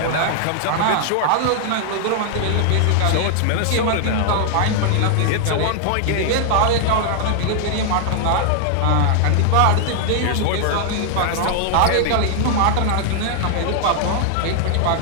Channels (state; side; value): different; both; correlation -0.01